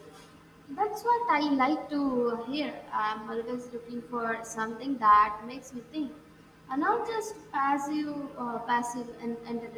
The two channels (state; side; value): identical; both; correlation 1.00